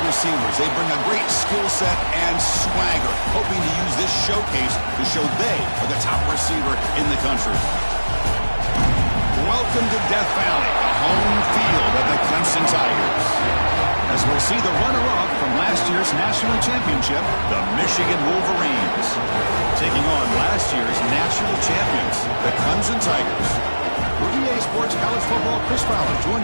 receivers. They bring a great skill set and swagger, hoping to use this showcase to show they are the top receiver in the country. Welcome to Death Valley, the home field of the Clemson Tigers. As we'll see the runner-up from last year's national championship, the Michigan Wolverines, taking on last year's national champions, the Clemson Tigers. For EA Sports College Football, Chris Fowler,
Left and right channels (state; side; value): inverted; both; correlation -1.00